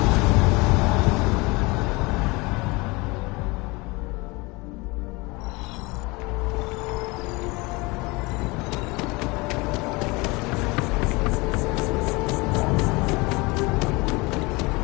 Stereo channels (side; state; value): right; quieter; 24.8 dB